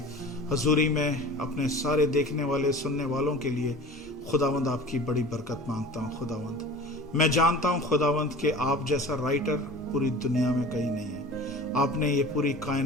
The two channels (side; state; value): both; normal; correlation 0.39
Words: हजूरी में अपने सारे देखने वाले सुनने वालों के लिए खुदावंद आपकी बड़ी बरकत मांगता हूँ। खुदावंद मैं जानता हूँ खुदावंद कि आप जैसा राइटर पूरी दुनिया में कहीं नहीं है। आपने ये पूरी